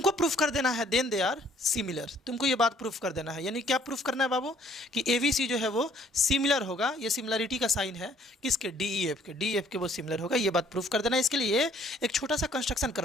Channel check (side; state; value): both; normal; correlation 0.61